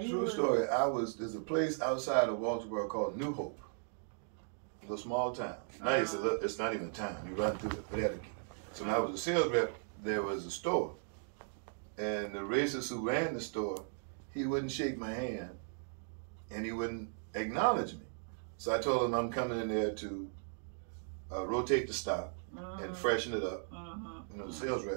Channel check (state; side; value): silent; left; digital silence